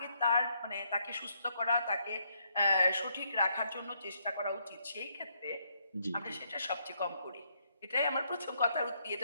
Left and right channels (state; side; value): inverted; both; correlation -0.74